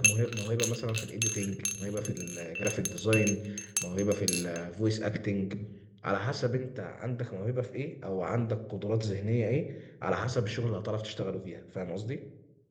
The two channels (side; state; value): both; identical; correlation 1.00